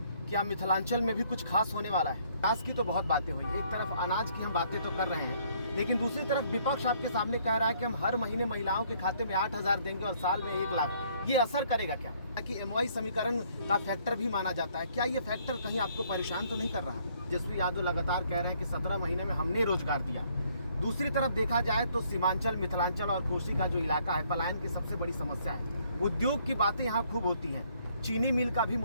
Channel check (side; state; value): both; inverted; correlation -0.65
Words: क्या मिथिलांचल में भी कुछ खास होने वाला है? विकास की तो बहुत बातें हुई, एक तरफ अनाज की हम बातें तो कर रहे हैं, लेकिन दूसरी तरफ विपक्ष आपके सामने कह रहा है कि हम हर महीने महिलाओं के खाते में 8,000 देंगे और साल में 1 लाख। ये असर करेगा क्या? कि MY समीकरण का फैक्टर भी माना जाता है, क्या ये फैक्टर कहीं आपको परेशान तो नहीं कर रहा? तेजस्वी यादव लगातार कह रहे हैं कि 17 महीने में हमने रोजगार दिया। दूसरी तरफ देखा जाए तो सीमांचल, मिथिलांचल और कोसी का जो इलाका है, पलायन की सबसे बड़ी समस्या है। उद्योग की बातें यहाँ खूब होती हैं, चीनी मिल का भी